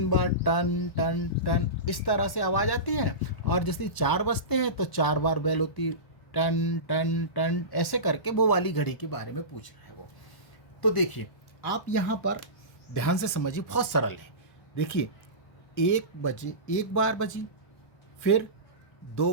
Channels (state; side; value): late; right; 1.1 ms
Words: बार टन टन टन, इस तरह से आवाज़ आती है, और जैसे 4 बजते हैं तो 4 बार बेल होती है, टन टन टन, ऐसे करके वो वाली घड़ी के बारे में पूछ रहा है वो। तो देखिए आप यहाँ पर ध्यान से समझिए, बहुत सरल है। देखिए 1 बजे 1 बार बजी, फिर 2